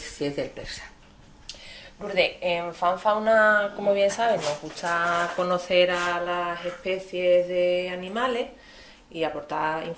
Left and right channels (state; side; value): identical; both; correlation 1.00